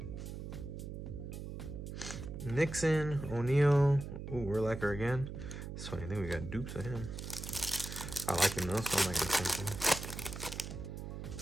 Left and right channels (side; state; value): right; noise; hum, 8 dB below the sound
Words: Nixon, O'Neal. Ooh, Urlacher again. It's funny, I think we got dupes of him. I like him though, so I'm not gonna change him.